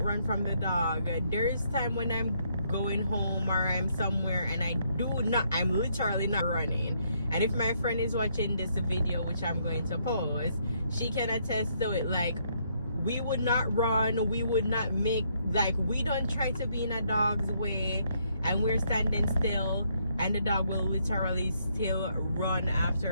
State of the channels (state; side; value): inverted; both; correlation -0.72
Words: run from the dog, there's time when I'm going home or I'm somewhere and I'm literally not running. And if my friend is watching this video, which I'm going to post, she can attest to it. Like, we would not run, we would not make, like, we don't try to be in a dog's way, and we're standing still and the dog will literally still run